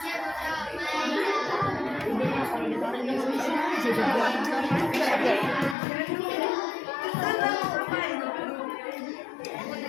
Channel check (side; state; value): right; drops out; at 5.8 s